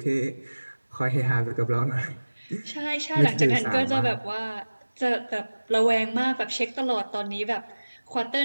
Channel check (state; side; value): inverted; both; correlation -1.00